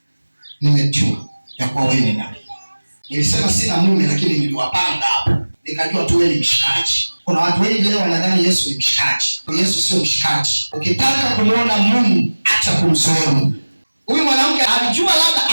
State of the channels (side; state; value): both; inverted; correlation -1.00